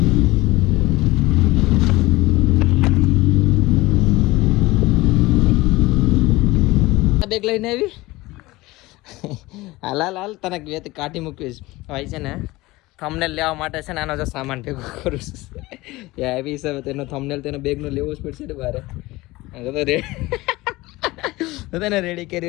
બેગ લઈને આવી હાલ તને બે કાઢી મૂકીશ ભાઈ છે ને થંબનેલ લેવા માટે છે ને આનો જો સામાન ભેગો કરું છું એવી હિસાબે તેનો થંબનેલ તેનો બેગનો લેવો જ પડશે ને બારે તો તેને રેડી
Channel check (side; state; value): right; quieter; 20.0 dB